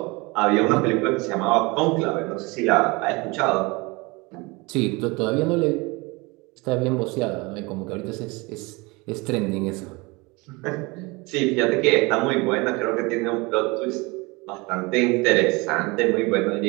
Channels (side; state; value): left; quieter; 25.5 dB